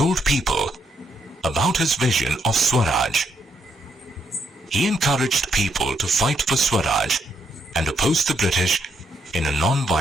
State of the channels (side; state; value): both; normal; correlation 0.76